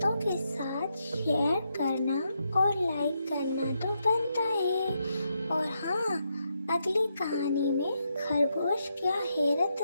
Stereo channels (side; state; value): both; inverted; correlation -0.82